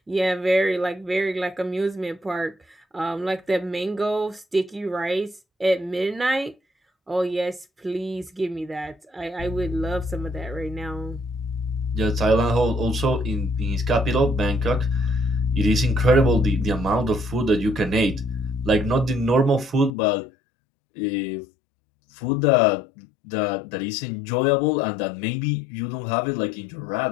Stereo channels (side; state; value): right; drops out; at 19.9 s